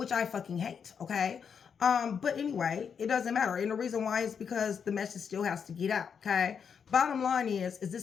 I fucking hate, okay? But anyway, it doesn't matter. And the reason why is because the message still has to get out, okay? Bottom line is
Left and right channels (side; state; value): right; quieter; 6.9 dB